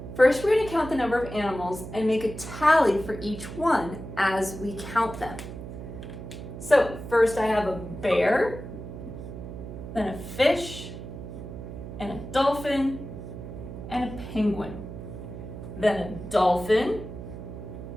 first we're going to count the number of animals and make a tally for each one as we count them. So, first I have a bear, then a fish, and a dolphin, and a penguin. Then a dolphin,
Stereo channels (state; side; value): noise; right; hum, 10 dB below the sound